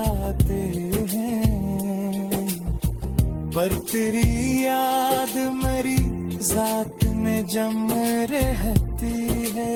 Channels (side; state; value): both; identical; correlation 1.00